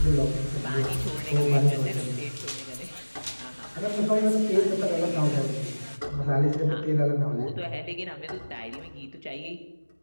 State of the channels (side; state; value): both; inverted; correlation -1.00